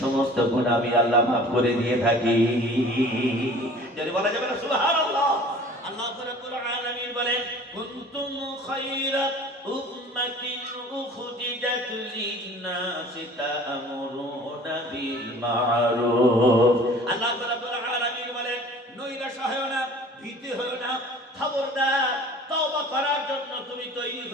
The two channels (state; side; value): normal; both; correlation 0.46